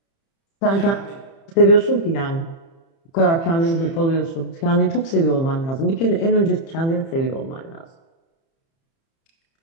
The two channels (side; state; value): right; late; 30 ms